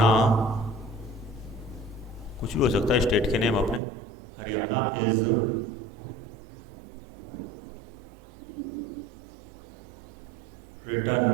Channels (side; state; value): left; drops out; at 3.8 s